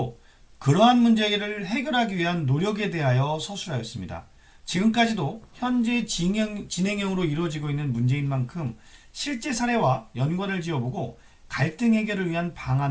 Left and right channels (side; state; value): both; identical; correlation 1.00